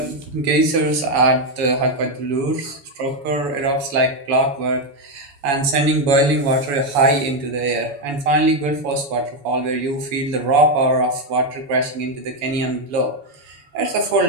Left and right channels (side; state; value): left; late; 7.1 ms